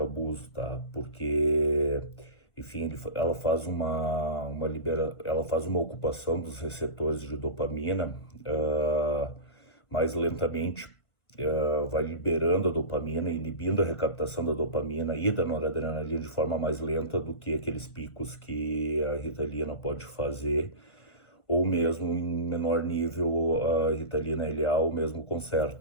abuso, tá? Porque, enfim, ela faz ela faz uma ocupação dos receptores de dopamina mais lentamente, vai liberando a dopamina, inibindo a recaptação da dopamina e da noradrenalina de forma mais lenta do que aqueles picos que a Ritalina pode fazer, ou mesmo em menor nível a Ritalina LA ou mesmo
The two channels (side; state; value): right; late; 1.5 ms